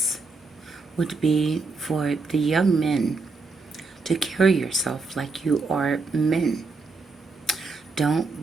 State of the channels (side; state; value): left; quieter; 4.0 dB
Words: would be for the young men to carry yourself like you are men.